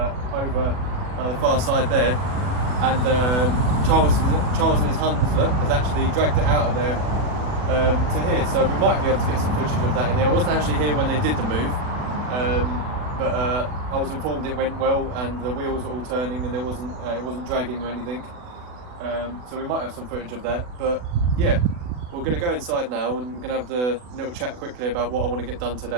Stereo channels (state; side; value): late; left; 40 ms